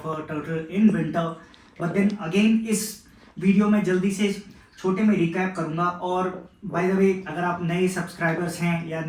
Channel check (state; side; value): identical; both; correlation 1.00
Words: a turtle in winter, but then again इस वीडियो में जल्दी से छोटे में रिकैप करूंगा। और बाय द वे, अगर आप नए सब्सक्राइबर्स हैं या